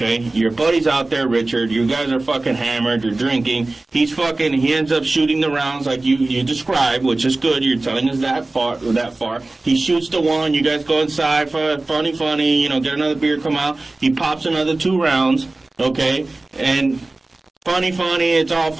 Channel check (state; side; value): quieter; left; 3.0 dB